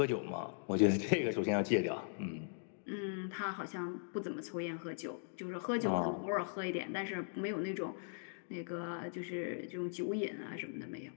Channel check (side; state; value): right; silent; digital silence